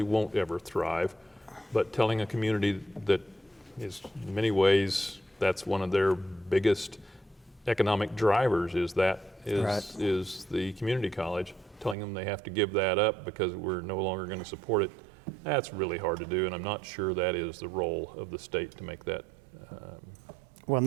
won't ever thrive. But telling a community that is in many ways That's one of their biggest economic drivers is the community college, telling them they have to give that up because we're no longer going to support it. That's really hard to do, and I'm not sure that is the role of the state to make that Well,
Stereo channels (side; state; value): left; drops out; at 12.0 s